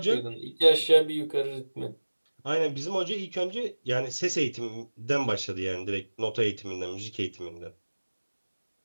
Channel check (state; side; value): inverted; both; correlation -1.00